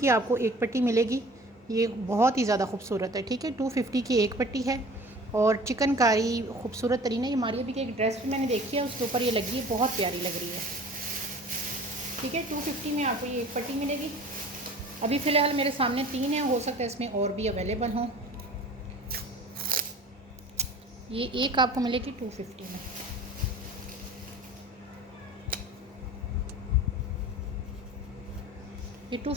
आपको एक पट्टी मिलेगी। ये बहुत ही ज़्यादा खूबसूरत है, ठीक है। 250 की एक पट्टी है और चिकनकारी खूबसूरत तरीन है। ये मारिया भी की एक ड्रेस भी मैंने देखी है, उसके ऊपर ये लगी है, बहुत प्यारी लग रही है, ठीक है। 250 में आपको ये एक पट्टी मिलेगी। अभी फ़िलहाल मेरे सामने 3 हैं, हो सकता है इसमें और भी अवेलेबल हों। ये एक आपको मिलेगी 250 में। ये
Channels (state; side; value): normal; both; correlation 0.44